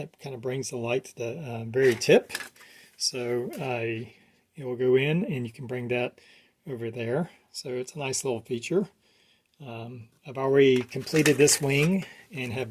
kind of brings the light to the very tip. So it will go in and you can bring that over there. So it's a nice little feature. I've already completed this wing and have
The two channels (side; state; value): both; identical; correlation 1.00